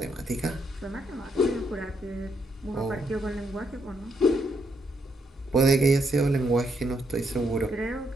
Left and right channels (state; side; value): normal; both; correlation 0.77